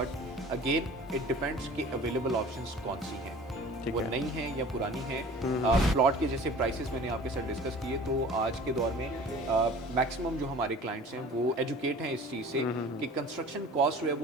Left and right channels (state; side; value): normal; both; correlation 0.44